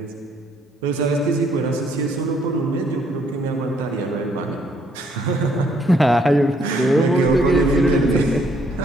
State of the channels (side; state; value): both; normal; correlation 0.68